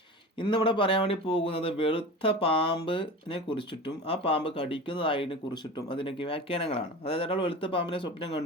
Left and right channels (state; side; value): normal; both; correlation 0.33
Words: ഇന്നിവിടെ പറയാൻ വേണ്ടി പോകുന്നത് വെളുത്ത പാമ്പിനെ കുറിച്ചിട്ടും ആ പാമ്പ് കടിക്കുന്നതായതിനെ കുറിച്ചിട്ടും അതിനൊക്കെ വ്യാഖ്യാനങ്ങളാണ്. അതായത് ഒരാൾ വെളുത്ത പാമ്പിനെ സ്വപ്നം